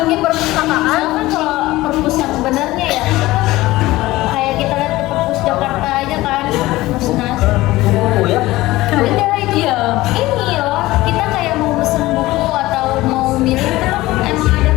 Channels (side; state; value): right; quieter; 18.1 dB